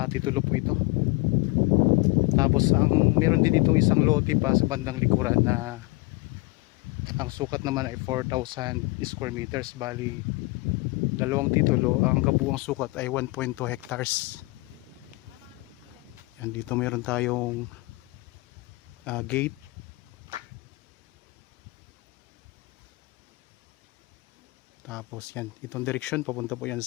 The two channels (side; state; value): right; quieter; 24.4 dB